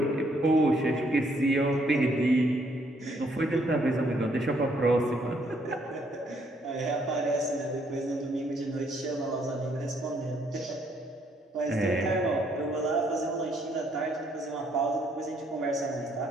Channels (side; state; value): both; normal; correlation 0.69